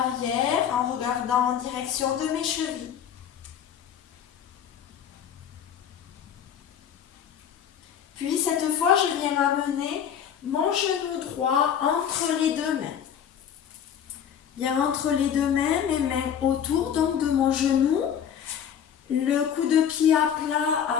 en regardant en direction de mes chevilles. Puis cette fois, je viens amener mon genou droit entre les deux mains. Bien entre les deux mains, mes mains autour donc de mon genou. Le coup de pied à plat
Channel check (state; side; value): quieter; right; 8.7 dB